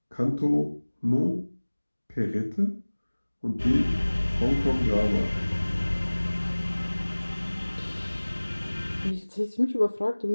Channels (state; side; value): inverted; both; correlation -1.00